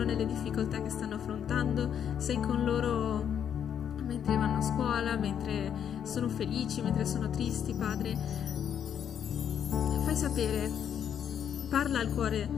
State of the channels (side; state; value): right; quieter; 8.7 dB